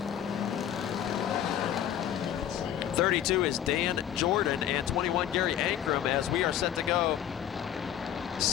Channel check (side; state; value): right; quieter; 10.5 dB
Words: 32 is Dan Jordan and 21 Gary Ankrum as we are set to go